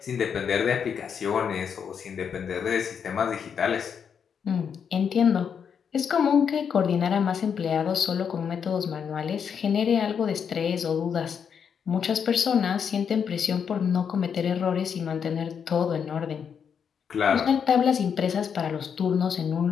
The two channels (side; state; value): right; quieter; 7.2 dB